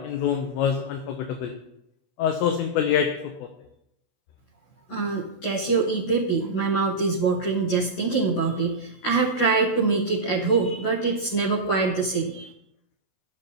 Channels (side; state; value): right; late; 16 ms